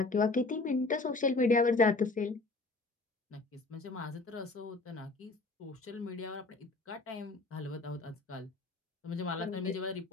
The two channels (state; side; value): quieter; right; 3.5 dB